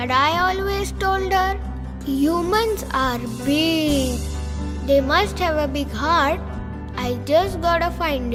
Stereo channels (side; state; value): both; identical; correlation 1.00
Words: I always told her, humans are big. They must have a big heart. I just gotta find